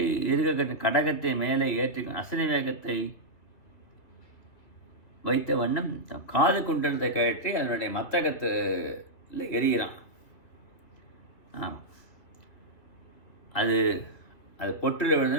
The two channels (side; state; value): right; late; 2.5 ms